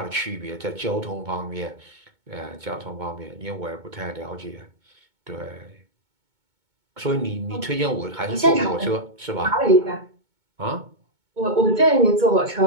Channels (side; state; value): left; late; 2.2 ms